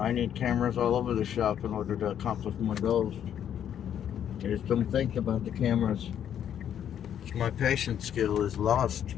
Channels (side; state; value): right; quieter; 9.6 dB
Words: need cameras all over the shop in order to accomplish my goals. I just don't think about the cameras. My patience skill is lost.